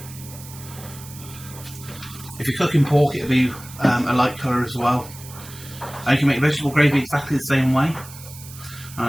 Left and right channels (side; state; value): right; noise; hiss, 16 dB below the sound